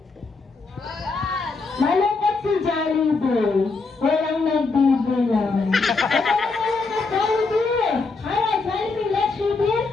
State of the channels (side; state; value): right; quieter; 4.0 dB